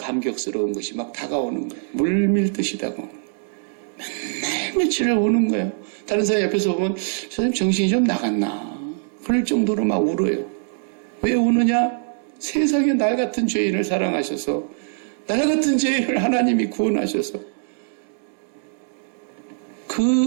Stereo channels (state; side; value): silent; left; digital silence